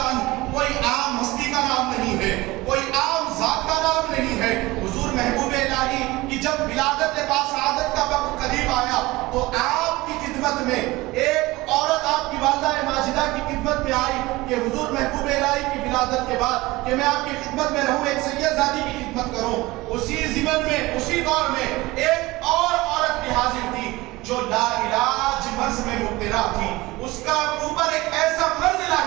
عنہ کوئی عام ہستی کا نام نہیں ہے، کوئی عام ذات کا نام نہیں ہے. حضور محبوب الہی کی جب ولادت باسعادت کا وقت قریب آیا تو آپ کی خدمت میں ایک عورت آپ کی والدہ ماجدہ کی خدمت میں آئی کہ حضور محبوب الہی کی ولادت کے بعد کہ میں آپ کی خدمت میں رہوں، ایک سید زادی کی خدمت کروں. اسی زمن میں اسی دور میں ایک اور عورت بھی حاضر تھی جو لا علاج مرض میں مبتلا تھی. اس کا اوپر ایک ایسا مرض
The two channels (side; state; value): left; quieter; 20.3 dB